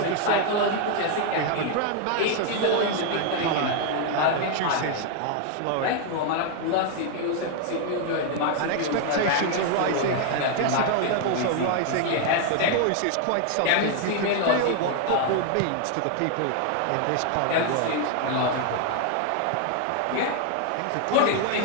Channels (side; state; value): both; different; correlation 0.00